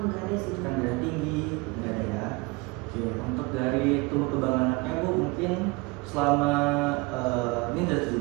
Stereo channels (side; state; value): left; quieter; 25.6 dB